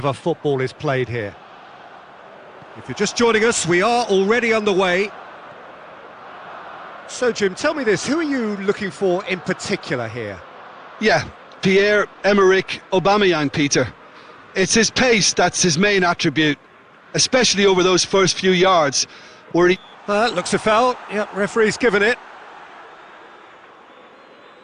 football is played here. If you're just joining us, we are already underway. So, Jim, tell me this, who are you looking for in particular here? Yeah, Pierre-Emerick Aubameyang, Peter. It's his pace that's his main attribute, especially over those first few yards, where he... Looks a foul. Yep, referee's given it.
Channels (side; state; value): both; identical; correlation 1.00